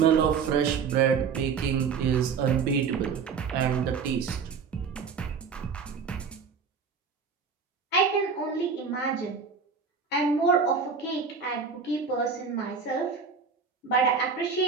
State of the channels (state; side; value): quieter; left; 5.8 dB